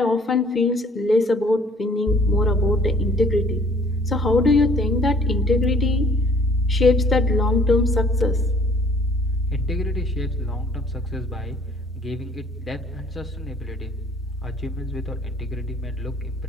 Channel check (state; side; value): normal; both; correlation 0.58